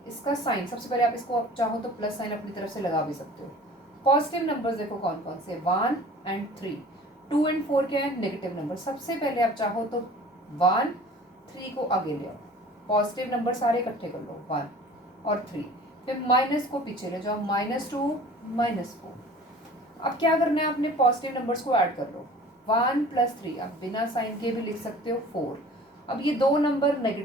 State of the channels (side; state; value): both; normal; correlation 0.45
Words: इसका साइन सबसे पहले आप इसको आप चाहो तो प्लस साइन अपनी तरफ से लगा भी सकते हो. पॉजिटिव नंबर्स देखो कौन कौन से, 1 और 3. 2 और 4 क्या है? Negative number. सबसे पहले आप चाहो तो 1 3 को आगे ले आओ. पॉजिटिव नंबर सारे इकट्ठे कर लो, 1 और 3. फिर माइनस को पीछे ले जाओ, -2 -4. अब क्या करना है, आपने पॉजिटिव नंबर्स को ऐड कर लो. 1 + 3 आप बिना साइन के भी लिख सकते हो, 4. अब ये दो नंबर